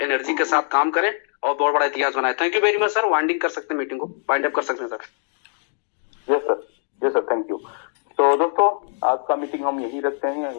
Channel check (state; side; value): silent; right; digital silence